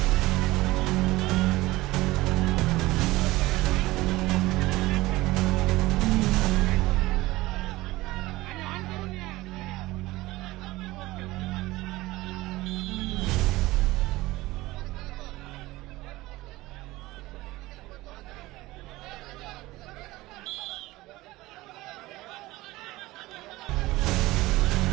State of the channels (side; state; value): left; quieter; 19.0 dB